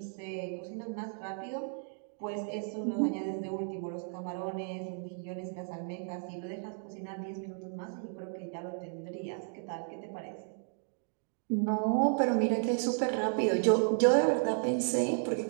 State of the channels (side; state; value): left; silent; 55 dB below the other